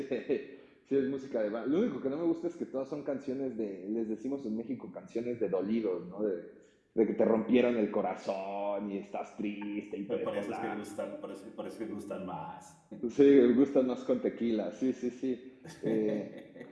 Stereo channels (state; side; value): identical; both; correlation 1.00